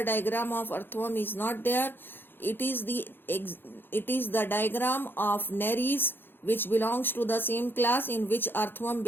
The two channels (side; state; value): right; late; 0.10 ms